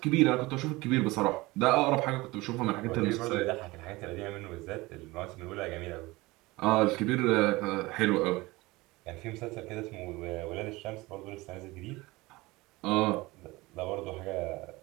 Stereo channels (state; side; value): quieter; left; 21.4 dB